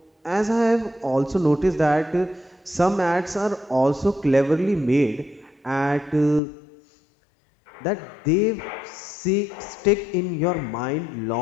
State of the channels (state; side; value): drops out; right; at 6.4 s